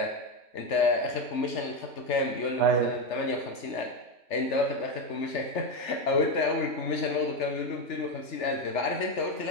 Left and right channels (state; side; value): late; right; 3.4 ms